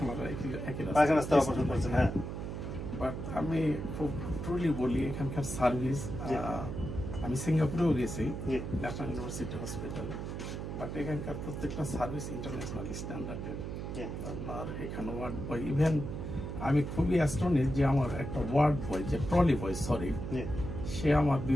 পায়খানা রাস্তায় অপারেশন করেছেন? হ্যাঁ। বাট আমি খুব ট্রুলি বলি, এখানকার সার্ভিস, আমি সিঙ্গাপুরেও গেছি ন্যাশনাল ইউনিভার্সিটি হসপিটালে, বাট এখানকার প্রত্যেকটা সার্ভিস ইন্টারন্যাশনাল স্ট্যান্ডার্ডের। আপনার এখানে ওয়ার্ড বয়, ইভেন আমি খুবই অ্যাস্টনিশ যে আমার একটা ওয়ার্ড বয়, যে ট্রলি বয়, সরি, সে আমার 2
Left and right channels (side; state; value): right; noise; hum, 6 dB below the sound